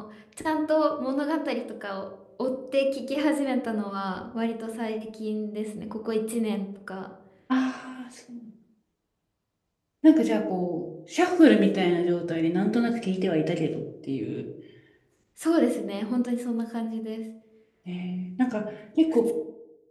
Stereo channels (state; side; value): identical; both; correlation 1.00